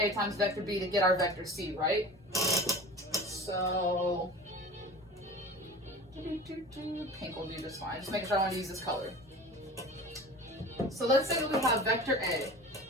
times vector B to get our vector C, right? So, pink will do just fine. Just making sure I want to use this color. So let's say that we have vector A,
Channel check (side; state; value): both; normal; correlation 0.38